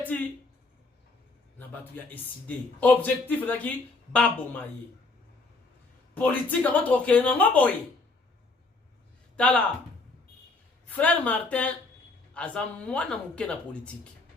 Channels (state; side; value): quieter; right; 3.6 dB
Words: na batu ya décidé. Objectif là qui babomaye. Politique avant troquer na ngoboye. Tala frère Martin aza mwana muke na politique.